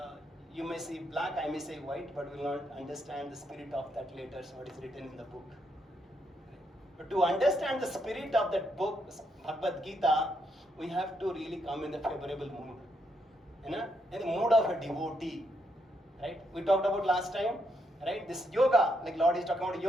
you may see black, I may say white, but will not understand the spirit of that letters, what is written in the book. But to understand the spirit of that book, Bhagavad Gita, we have to really come in the favorable mood. In the mood of a devotee. Right? We talked about last time, right? This yoga, like Lord is talking about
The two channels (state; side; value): normal; both; correlation 0.78